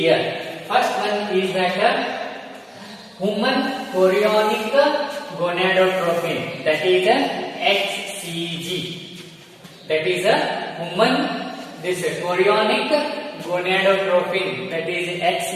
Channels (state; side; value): identical; both; correlation 1.00